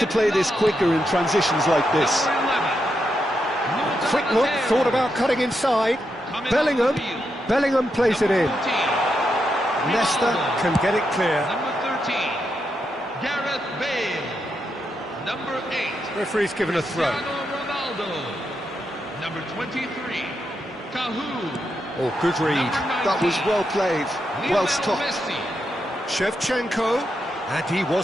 play this quicker in transitions like this. Quick look, thought about cutting inside. Bellingham. Bellingham plays it in. Leicester can get it clear. Number 13, Gareth Bale. Number 8, Referee's given a throw. Cristiano Ronaldo. Number 23, Cahoon. Oh, good read. That was well played, well stopped. Messi. Shevchenko, and he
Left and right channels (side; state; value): both; normal; correlation 0.83